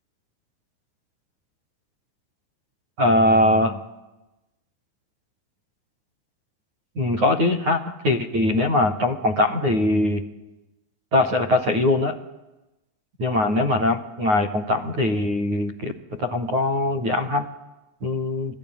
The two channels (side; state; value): left; late; 9.5 ms